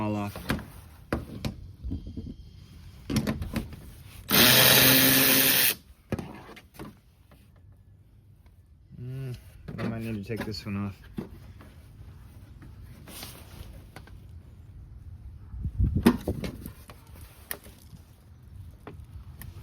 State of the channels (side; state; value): both; identical; correlation 1.00